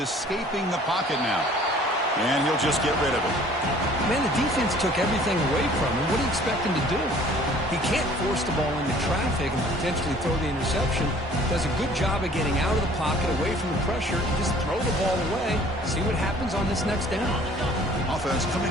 the pocket now. And he'll just get rid of it. Man, the defense took everything away from him. What do you expect him to do? He can't force the ball into traffic and potentially throw the interception. Does a good job of getting out of the pocket, away from the pressure. Just throw the ball away. See what happens on this next down. Offense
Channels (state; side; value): normal; both; correlation 0.53